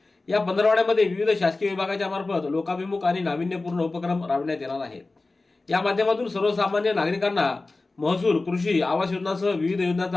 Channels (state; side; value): quieter; right; 3.4 dB